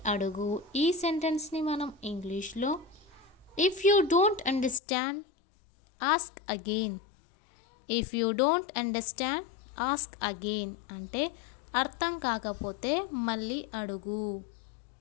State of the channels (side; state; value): right; drops out; at 4.8 s